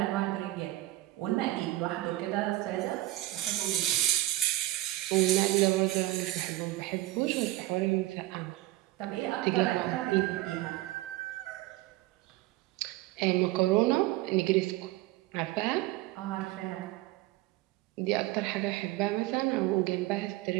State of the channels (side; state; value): left; quieter; 17.3 dB